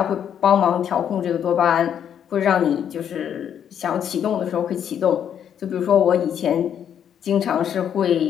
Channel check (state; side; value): quieter; right; 9.0 dB